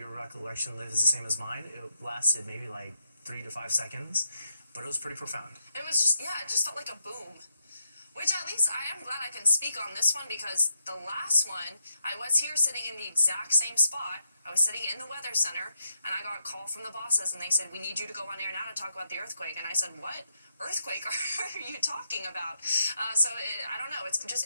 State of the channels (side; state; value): both; inverted; correlation -0.82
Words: recollection, Liv, is the same as mine, it lasted maybe like 3 to 5 seconds, but it was pretty profound. It was just, it just felt like a boom. Which at least I am glad I can speak on this one, because the last one, I was here sitting in the exact same spot. I was sitting in the weather center, and I got a call from the bosses, and they said, we need you to go on air now to talk about the earthquake. And I said, what earthquake are you talking about? I don't know. It's